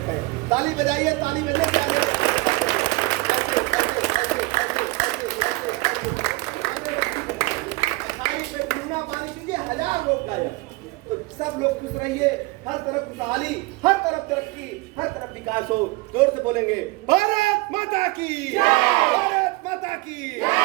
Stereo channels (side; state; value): left; quieter; 22.5 dB